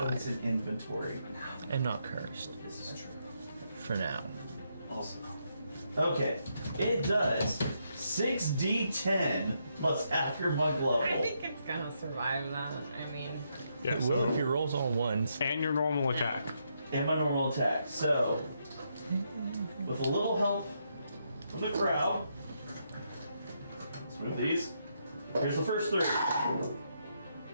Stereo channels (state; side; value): inverted; both; correlation -0.79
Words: in inventory. and not cursed This is true. for now. Also, Okay, it does 6d10 plus half your mug I level. think it's gonna survive that. I mean, Yeah, It will if your rolls all ones. and your normal attack. And my normal attack. So, with a little help from the crowd, let's move these. Here's the first 3.